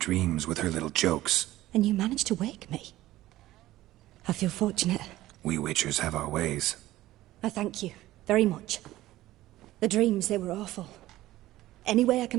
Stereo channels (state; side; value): quieter; left; 15.9 dB